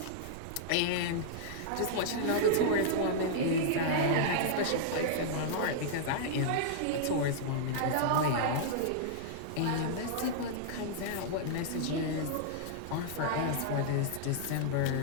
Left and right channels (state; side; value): different; both; correlation -0.02